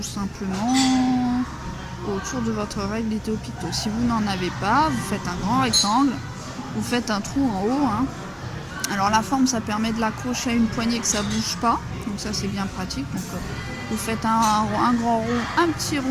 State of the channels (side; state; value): both; identical; correlation 1.00